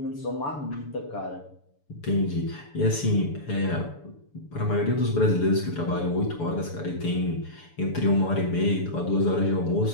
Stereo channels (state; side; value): late; right; 6.9 ms